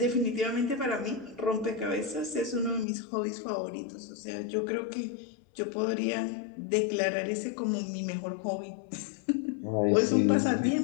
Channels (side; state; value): right; drops out; at 2.9 s